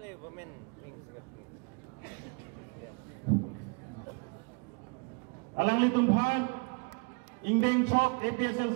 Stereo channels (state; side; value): quieter; left; 32.9 dB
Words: Women Wing Secretary. Alang litumhan Ingdeng Chok